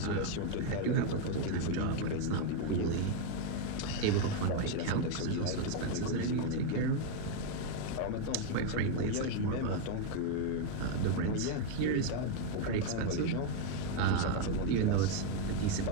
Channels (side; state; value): both; different; correlation 0.01